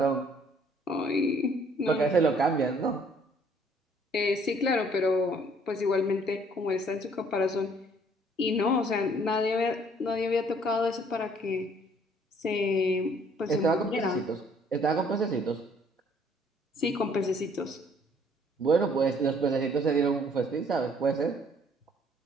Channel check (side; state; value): both; normal; correlation 0.61